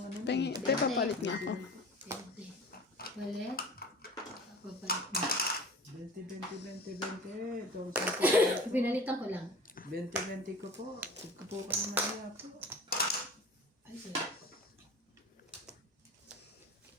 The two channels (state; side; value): normal; both; correlation 0.39